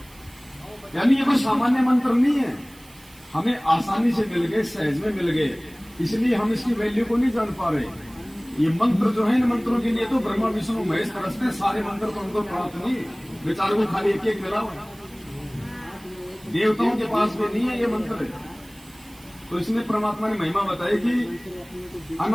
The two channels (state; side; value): noise; right; hiss, 24 dB below the sound